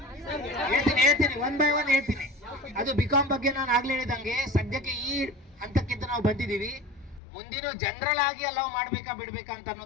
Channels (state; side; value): drops out; right; at 7.2 s